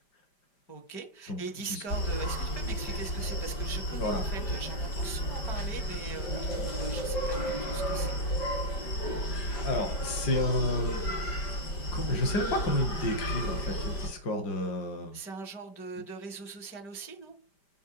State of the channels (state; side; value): late; right; 5.0 ms